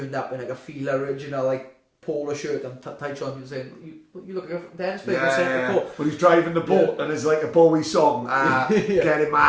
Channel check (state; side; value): identical; both; correlation 1.00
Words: up in like a Fila original like polo shirt and tight shorts. And saying, "You look like a dance player." When he's driving the boat and there's like a Bowie song, getting